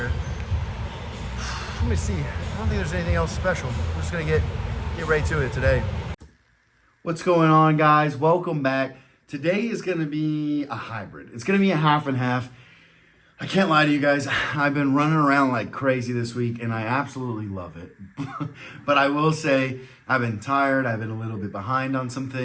Let me see, I don't think there's anything else special. We're just gonna get right to it today. What's going on, guys? Welcome back. Today is gonna be a hybrid. It's gonna be a half and half. I can't lie to you guys. I've been running around like crazy this week and I absolutely love it. But I will say I've been tired. I've been a little bit behind on some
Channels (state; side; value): identical; both; correlation 1.00